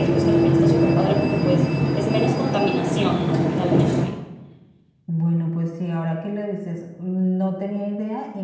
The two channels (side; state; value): both; identical; correlation 1.00